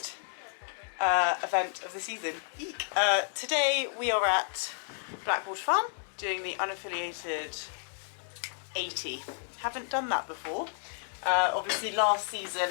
event of the season. Eek. Today we are at Blackwater Farm doing the unaffiliated 80. Haven't done that before. Obviously last season,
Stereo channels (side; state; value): right; silent; digital silence